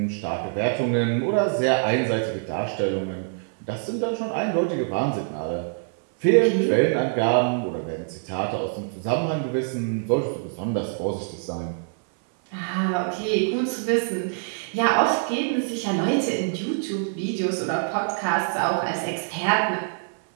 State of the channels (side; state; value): left; silent; 62 dB below the other